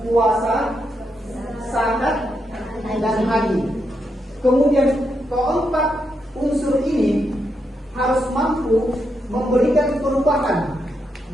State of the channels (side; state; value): both; normal; correlation 0.82